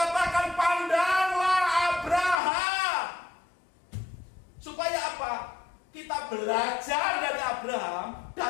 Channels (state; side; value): drops out; right; at 2.4 s